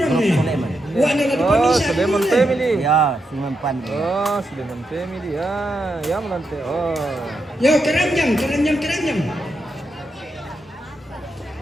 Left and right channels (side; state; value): both; normal; correlation 0.84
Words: Grup nih. Sulaiman. Wah, ada di Oh, pamisan. Sulaiman family. Ya, Sulaiman. Oh, Sulaiman family. Ya, ya menante. Oh. Yo, keranjang.